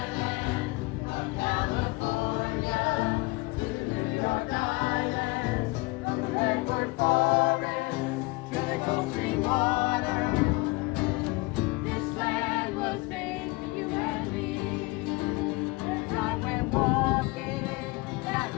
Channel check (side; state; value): right; quieter; 24.3 dB